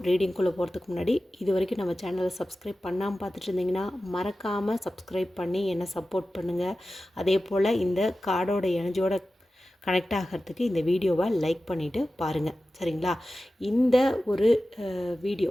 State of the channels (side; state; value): both; normal; correlation 0.94